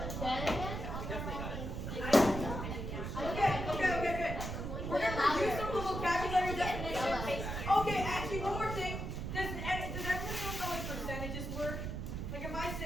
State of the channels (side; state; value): right; noise; rumble, 4 dB below the sound